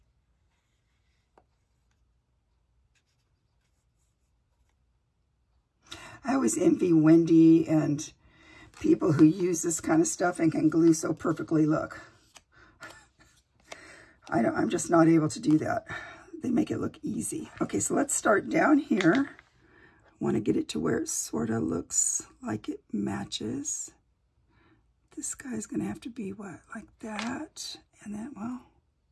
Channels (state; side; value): identical; both; correlation 1.00